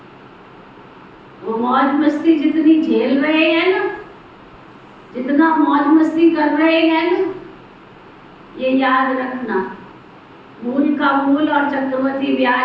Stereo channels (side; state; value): both; identical; correlation 1.00